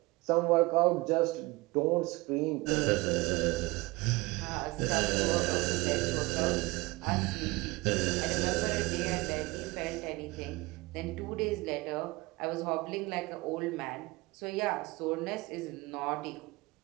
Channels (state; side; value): quieter; left; 22.9 dB